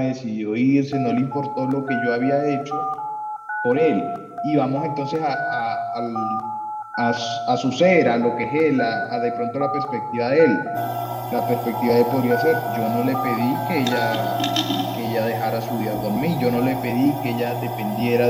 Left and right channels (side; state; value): both; identical; correlation 1.00